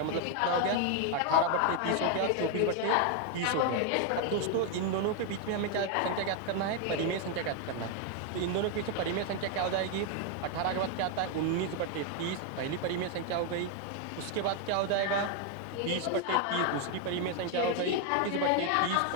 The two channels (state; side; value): different; both; correlation 0.01